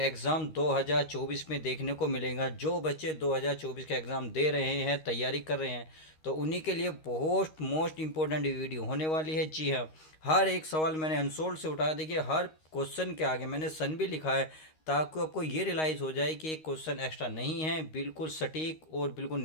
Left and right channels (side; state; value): right; late; 13 ms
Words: 2024 में देखने को मिलेगा। जो बच्चे 2024 का एग्ज़ाम दे रहे हैं, तैयारी कर रहे हैं, तो उन्हीं के लिए बहुत मोस्ट इम्पोर्टेंट वीडियो होने वाली है। जी हाँ, हर एक सवाल मैंने अनसोल्ड से उठाया। देखिए, हर क्वेश्चन के आगे मैंने सन भी लिखा है ताकि आपको ये रियलाइज़ हो जाए कि एक क्वेश्चन एक्स्ट्रा नहीं है, बिल्कुल सटीक और बिल्कुल